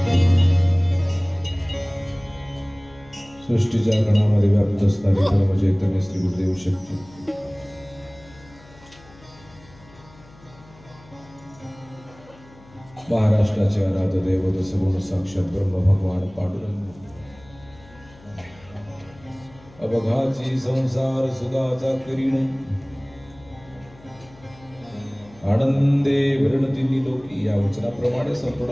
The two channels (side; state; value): left; noise; hum, 24 dB below the sound